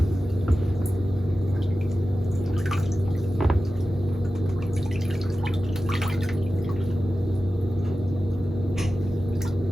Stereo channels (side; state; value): both; normal; correlation 0.94